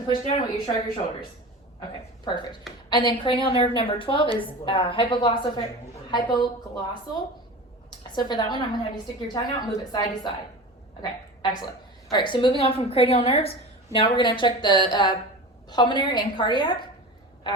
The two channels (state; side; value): normal; both; correlation 0.32